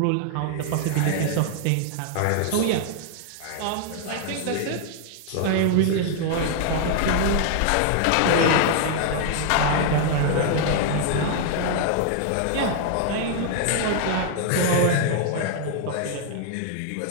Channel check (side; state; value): both; different; correlation 0.00